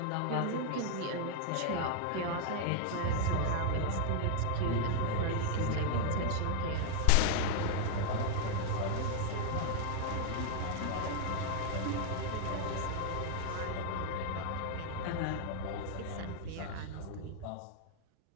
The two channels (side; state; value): both; different; correlation 0.00